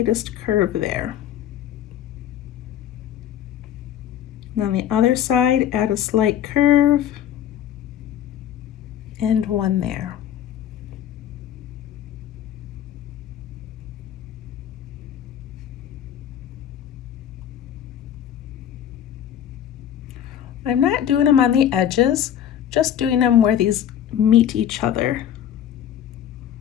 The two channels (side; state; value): right; quieter; 10.2 dB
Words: curve there. And on the other side, add a slight curve and one there. I'm not doing them on the edges, just doing them where these meet each other.